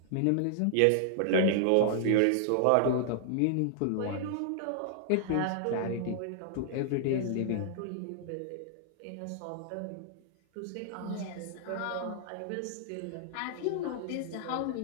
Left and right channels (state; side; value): different; both; correlation -0.01